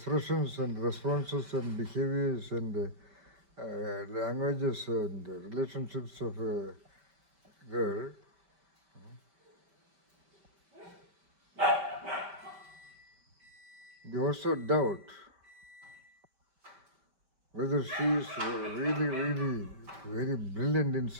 and responses and behaviors and languages and relationships of a girl, you also doubt whether she is really very brilliant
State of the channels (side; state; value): left; late; 5.0 ms